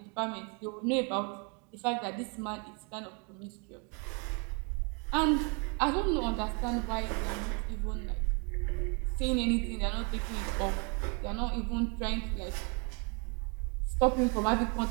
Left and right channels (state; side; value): quieter; left; 35.2 dB